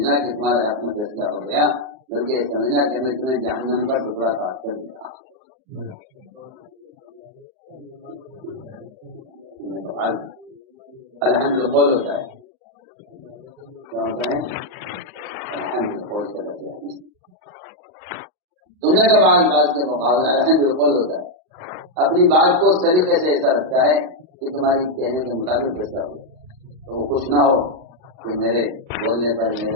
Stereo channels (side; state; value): left; late; 38 ms